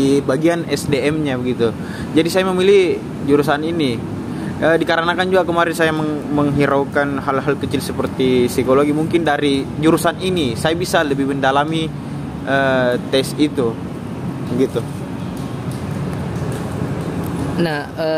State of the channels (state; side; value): identical; both; correlation 1.00